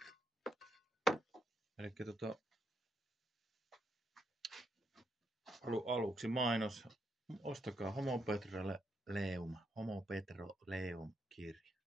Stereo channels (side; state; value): both; normal; correlation 0.79